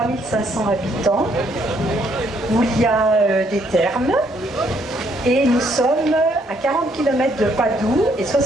habitants où il y a des thermes et nous sommes à 40 km de Padoue et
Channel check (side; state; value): both; normal; correlation 0.69